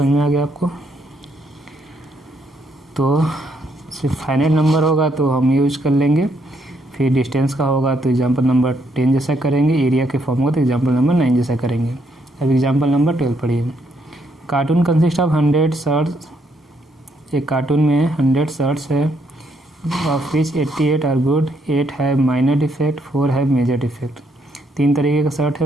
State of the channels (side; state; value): both; normal; correlation 0.74